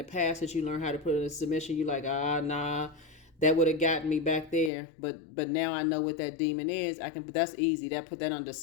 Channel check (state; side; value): drops out; right; at 4.7 s